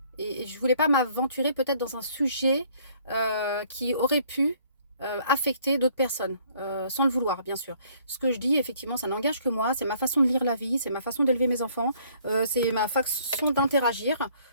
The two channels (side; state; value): both; inverted; correlation -0.62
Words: Et je ne voulais pas m'aventurer peut-être dans un sujet qui aurait pu affecter d'autres personnes, sans le vouloir, bien sûr. Ce que je dis, effectivement, ça n'engage que moi. C'est ma façon de lire la vie, c'est ma façon d'élever mes enfants, c'est ma façon d'interagir.